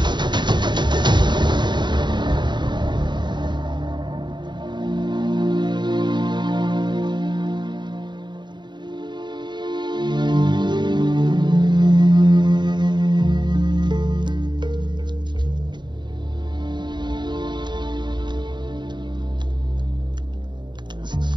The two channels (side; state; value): left; late; 0.22 ms